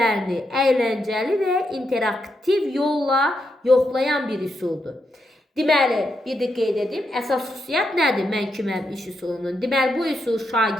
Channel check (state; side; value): normal; both; correlation 0.83